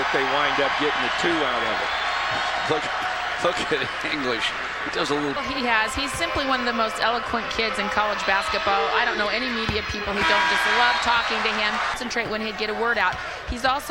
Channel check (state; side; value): identical; both; correlation 1.00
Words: they wind up getting the 2 out of it. Look at English. He does a little. He's simply one of the most eloquent kids in college basketball. I don't know any media people who don't just love talking to him. Concentrate when he'd get a word out. He's